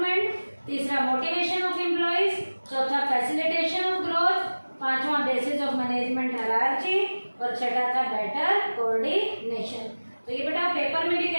तीसरा मोटिवेशन ऑफ एम्प्लॉयज, चौथा फैसिलिटेशन ऑफ ग्रोथ, पांचवा बेसिस ऑफ मैनेजमेंट हायरार्की और छठा था बेटर कोऑर्डिनेशन। तो ये बेटा पेपर में भी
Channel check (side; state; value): both; inverted; correlation -1.00